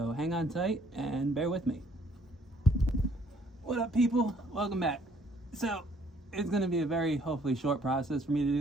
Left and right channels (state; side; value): normal; both; correlation 0.63